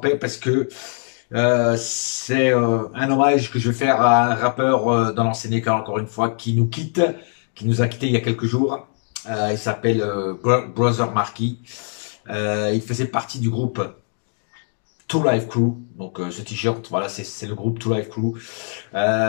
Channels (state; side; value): silent; right; 58 dB below the other